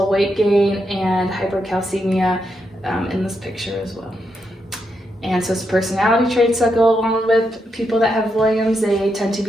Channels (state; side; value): normal; both; correlation 0.82